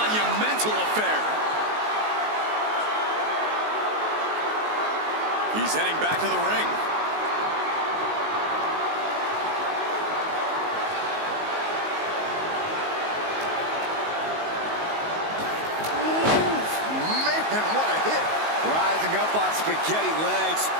affair. He's heading back to the ring. Man, what a hit. Rising up on spaghetti legs.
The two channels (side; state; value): left; late; 19 ms